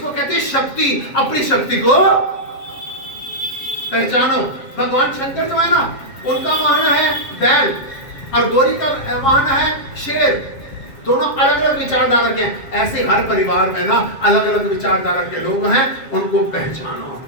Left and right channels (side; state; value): right; late; 7.4 ms